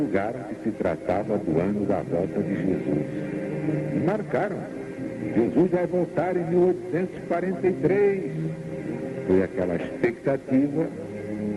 que se tratava do ano da volta de Jesus. E marcaram. Jesus vai voltar em 1843. Foi aquela expectativa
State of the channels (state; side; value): identical; both; correlation 1.00